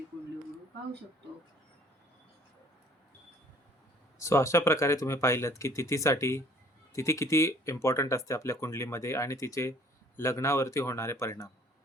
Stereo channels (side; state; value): both; normal; correlation 0.56